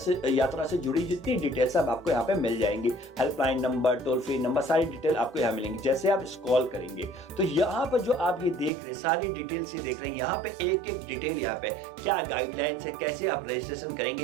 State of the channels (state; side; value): drops out; left; at 8.7 s